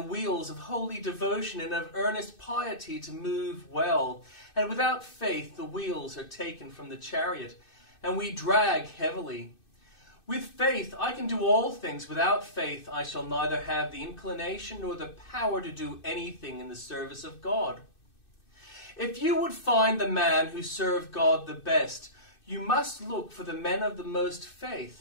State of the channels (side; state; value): right; late; 2.6 ms